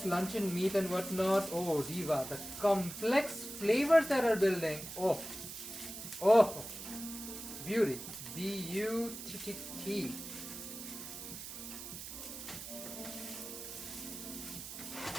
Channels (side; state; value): right; noise; hiss, 10 dB below the sound